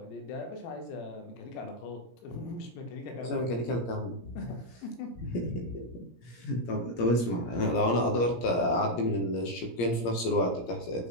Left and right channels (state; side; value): late; right; 17 ms